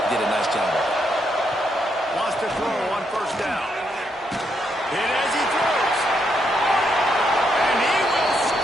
Did a nice job of it. Wants to throw on 1st down. Hit as he throws. And he will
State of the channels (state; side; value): normal; both; correlation 0.78